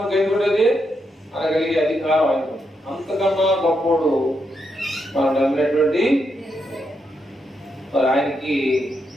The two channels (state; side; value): normal; both; correlation 0.82